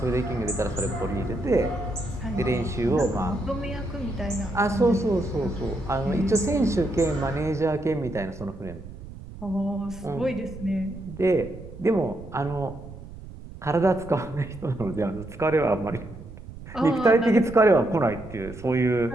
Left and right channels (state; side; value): noise; right; rumble, 14 dB below the sound